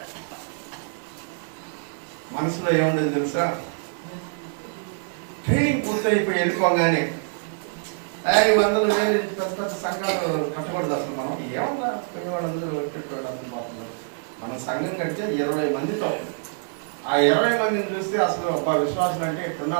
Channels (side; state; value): left; silent; digital silence